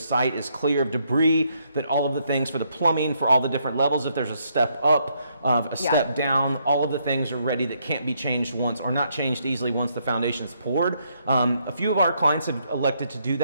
is clear of debris, that all of the things for the plumbing, for all the different levels, if there's a step up, a step down, all of the things are ready that can't be changed once, or not changed easily once the foundation's poured. A few of our clients have elected to do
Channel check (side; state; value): both; inverted; correlation -0.74